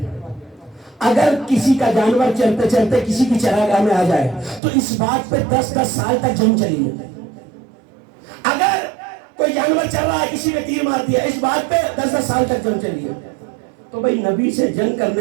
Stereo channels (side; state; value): left; drops out; at 4.6 s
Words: اگر کسی کا جانور چلتے چلتے کسی کی چراگاہ میں آ جائے تو اس بات پہ 10 سال تک جنگ چلی ہے. اگر کوئی جانور چل رہا ہے کسی نے تیر مار دیا, اس بات پہ 10 سال تک جنگ چلی ہے. تو بھائی نبی سے جنگ